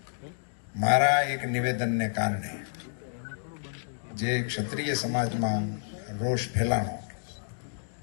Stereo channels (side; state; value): right; silent; digital silence